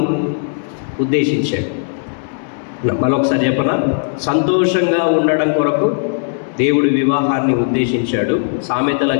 ఉద్దేశించాడు. మరొకసారి చెప్పనా? సంతోషంగా ఉండడం కొరకు దేవుడు వివాహాన్ని ఉద్దేశించాడు. సామెతల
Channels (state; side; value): silent; right; 65 dB below the other